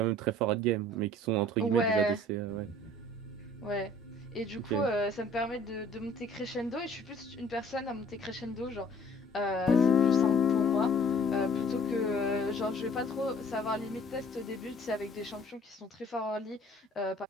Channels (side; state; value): both; normal; correlation 0.53